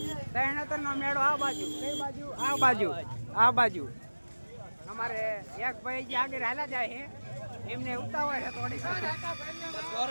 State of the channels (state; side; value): inverted; both; correlation -1.00